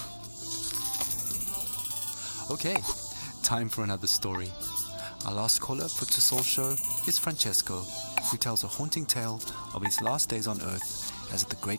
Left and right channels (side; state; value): both; inverted; correlation -1.00